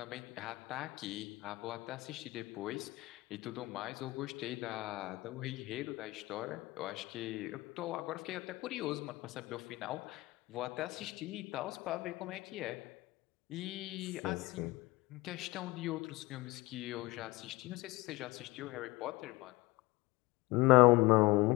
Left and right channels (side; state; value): right; quieter; 21.5 dB